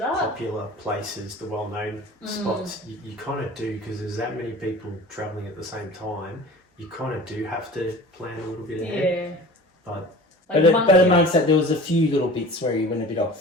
Popular places, the well-known spots, you kind of do, because there's that many people travelling at the same time. You kind of do have to plan a little bit ahead. But amongst that, there was a few little bits where you went a bit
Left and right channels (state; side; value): normal; both; correlation 0.40